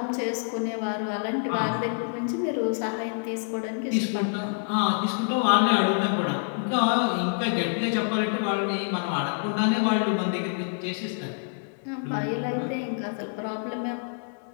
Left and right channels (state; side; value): silent; right; digital silence